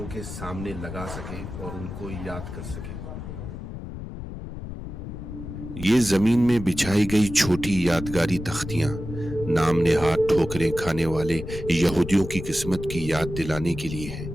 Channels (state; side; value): noise; left; rumble, 9 dB below the sound